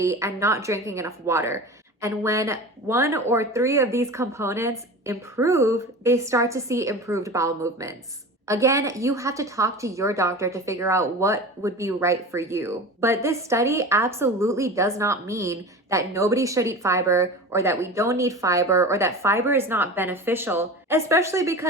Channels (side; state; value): both; normal; correlation 0.32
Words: and not drinking enough water. And when 1 or 3 of these components improve, they start to see improved bowel movements. Again, you have to talk to your doctor to figure out what would be right for you. But this study absolutely does not mean that nobody should eat fiber, or that we don't need fiber, or that fiber is not beneficial, especially